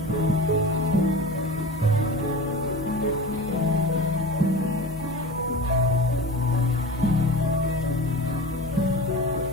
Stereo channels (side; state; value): both; normal; correlation 0.32